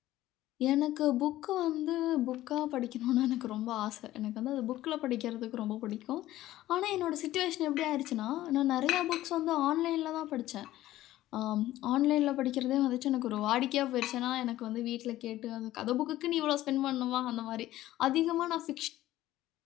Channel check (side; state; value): right; quieter; 15.0 dB